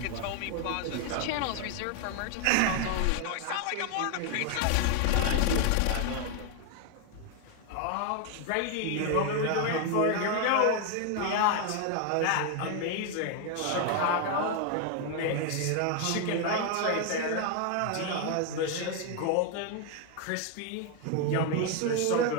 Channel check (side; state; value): both; different; correlation 0.01